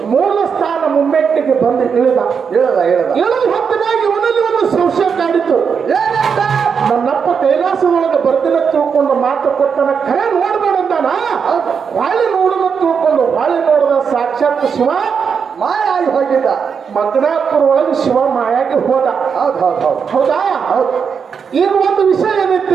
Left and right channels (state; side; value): quieter; left; 6.4 dB